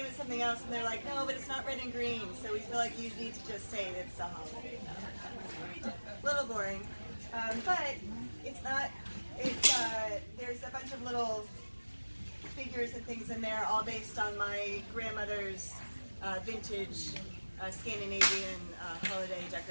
it something else, and they're like, no, but it's not red and green, so we feel like you need to just say it's a holiday. A little boring. But it's not, there's a bunch of little figures and things in there, all based on my grandmother's vintage Scandinavian holiday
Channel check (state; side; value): inverted; both; correlation -1.00